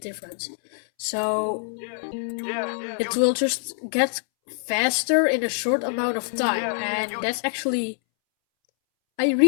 So it will just get faster in a short amount of time, and that's actually, I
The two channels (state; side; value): silent; right; 62 dB below the other